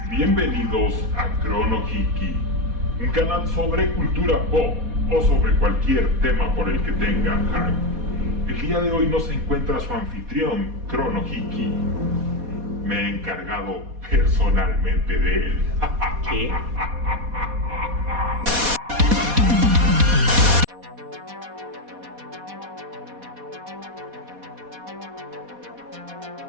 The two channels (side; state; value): left; late; 4.2 ms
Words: Bienvenidos a Chrono Hiki, un canal sobre cultura pop o sobre cualquier tema por el que tenga hype. El día de hoy nos encuentra su anfitrión, Chrono Hiki. Me he encargado personalmente de él. ¿Qué?